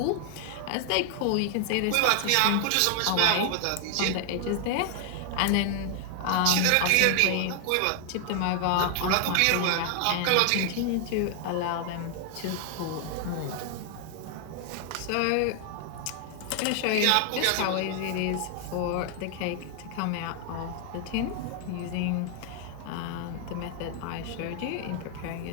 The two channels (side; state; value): both; different; correlation 0.00